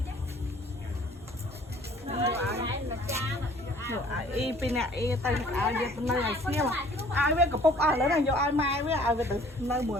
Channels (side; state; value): both; normal; correlation 0.54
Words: y pin nè y tay ai về nơi này xíu mà ai biết cặp bốc ai lấy này vô ai mai với ai về từ nơi